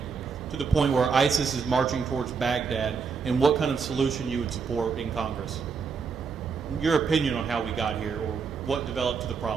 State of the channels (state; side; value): quieter; left; 5.6 dB